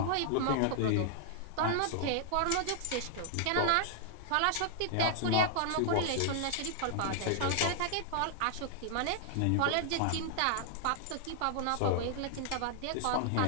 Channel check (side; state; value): both; different; correlation 0.00